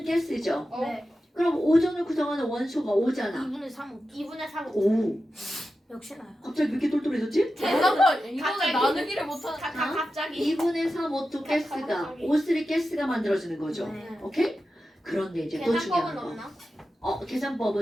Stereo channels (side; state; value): both; normal; correlation 0.91